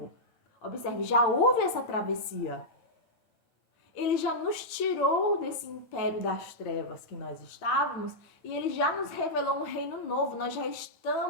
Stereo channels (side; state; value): right; late; 9.0 ms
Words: Observe, já houve essa travessia. Ele já nos tirou desse império das trevas que nós estávamos e ele já nos revelou um reino novo. Nós já